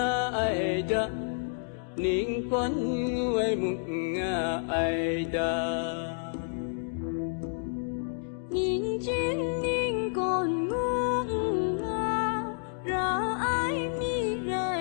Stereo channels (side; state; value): right; silent; digital silence